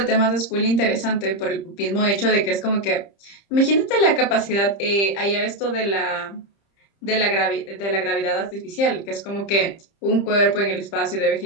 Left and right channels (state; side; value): late; right; 30 ms